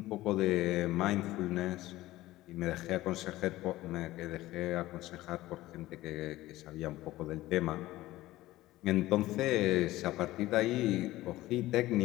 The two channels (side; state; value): right; quieter; 16.7 dB